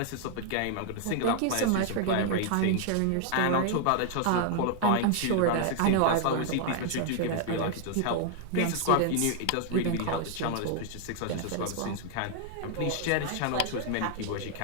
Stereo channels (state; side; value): different; both; correlation 0.00